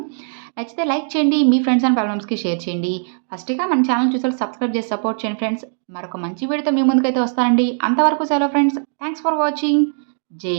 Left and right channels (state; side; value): silent; left; digital silence